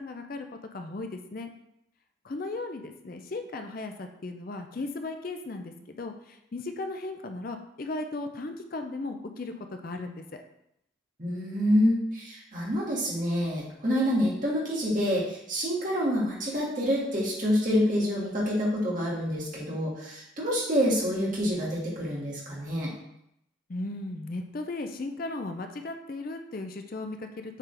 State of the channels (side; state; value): both; normal; correlation 0.68